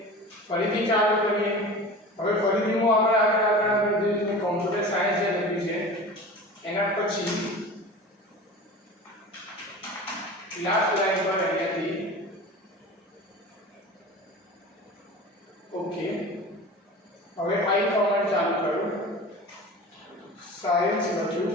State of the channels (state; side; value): normal; both; correlation 0.35